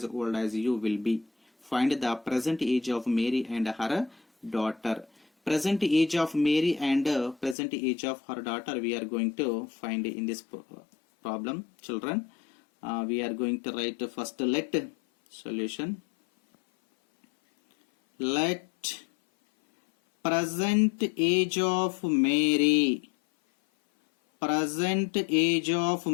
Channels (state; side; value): drops out; right; at 7.6 s